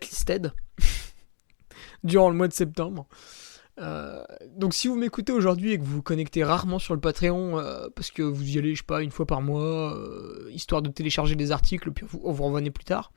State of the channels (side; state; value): right; silent; digital silence